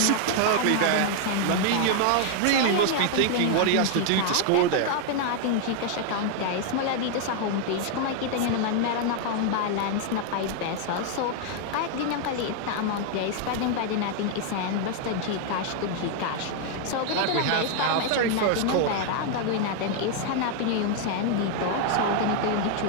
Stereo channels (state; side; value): different; both; correlation 0.00